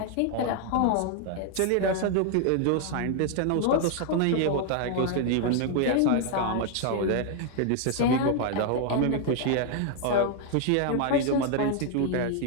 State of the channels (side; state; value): both; different; correlation 0.00